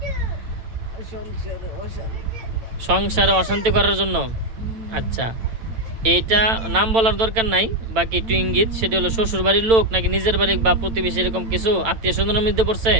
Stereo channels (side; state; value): left; late; 8.9 ms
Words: সংসারে অশান্তি করার জন্য। আচ্ছা, এইটা নাম বলার দরকার নাই, বাকি একটু ইঙ্গিত। সেটা হলো শ্বশুর বাড়ির লোক নাকি নিজের বাড়ি বা প্রতিবেশী, এরকম কিছু আত্মীয় স্বজনের মধ্যে পড়ছে?